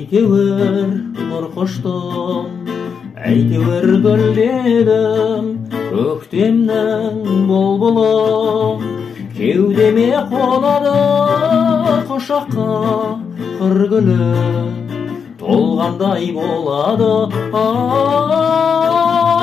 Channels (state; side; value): quieter; right; 6.4 dB